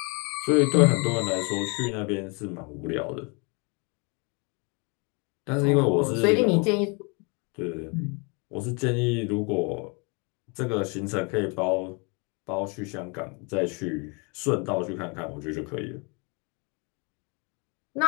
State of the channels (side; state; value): right; quieter; 32.2 dB